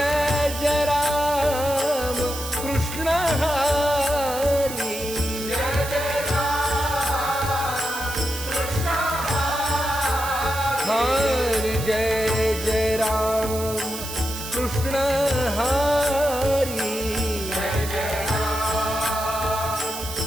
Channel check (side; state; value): right; noise; hiss, 9 dB below the sound